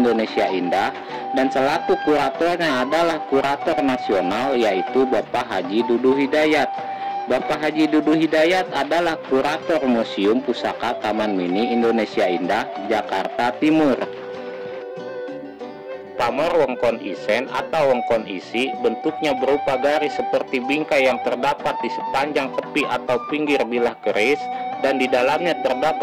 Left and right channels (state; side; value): identical; both; correlation 1.00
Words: Indah, dan selaku kuratornya adalah kurator nasional yaitu Bapak Haji Dudu Hidayat. Bapak Haji Dudu Hidayat adalah kurator Museum Pusaka Taman Mini Indonesia Indah, Jakarta Timur. Pamor Wongkon Isen atau Wongkon Isi bentuknya berupa garis seperti bingkai yang terdapat di sepanjang tepi atau pinggir bilah keris, dan di dalamnya